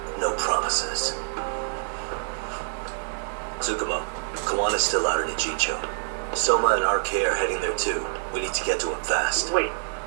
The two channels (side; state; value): left; silent; 61 dB below the other